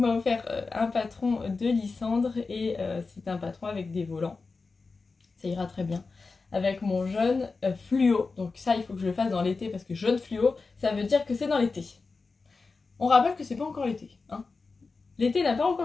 offert un patron de Lysandre et c'est un patron avec des volants. Ça ira très bien avec mon jaune fluo. Donc ça, il faut que je le fasse dans l'été parce que jaune fluo, ça veut dire que c'est dans l'été. On rappelle que c'est pas encore l'été. Hein. L'été n'a pas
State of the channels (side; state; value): right; quieter; 4.2 dB